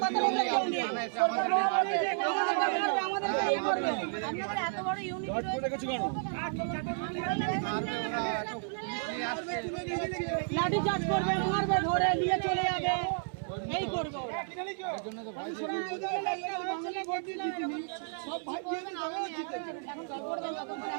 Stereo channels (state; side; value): silent; left; 56 dB below the other